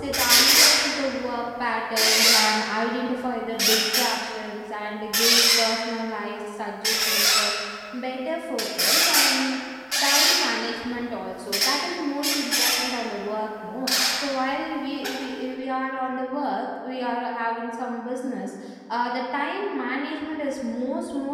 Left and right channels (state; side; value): identical; both; correlation 1.00